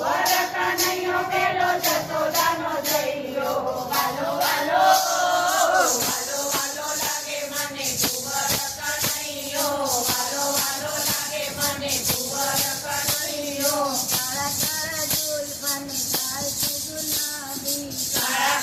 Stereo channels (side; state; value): both; identical; correlation 1.00